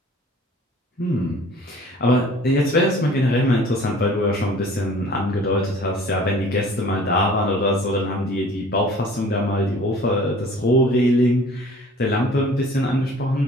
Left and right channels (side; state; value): both; normal; correlation 0.49